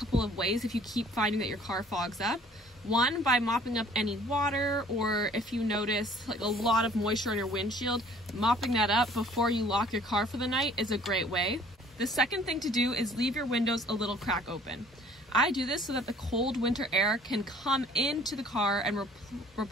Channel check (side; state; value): both; normal; correlation 0.54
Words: of ways if you keep finding that your car fogs up. One, by mopping up any water, or if you notice like a lot of moisture on your windshield, mopping that up before you lock your car for the night is a great way. The second thing to do is leave your windows a little crack open. I do this so that the cold winter air can come into the car and